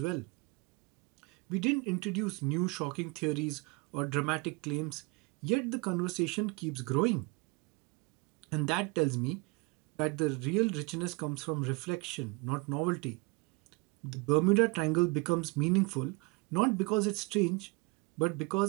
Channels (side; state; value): left; quieter; 27.3 dB